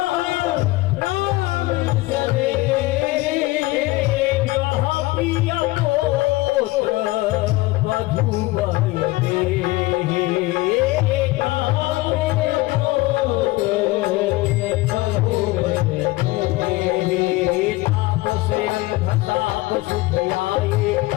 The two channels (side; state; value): right; quieter; 20.1 dB